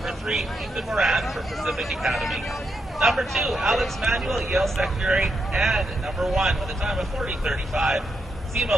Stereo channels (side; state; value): both; normal; correlation 0.82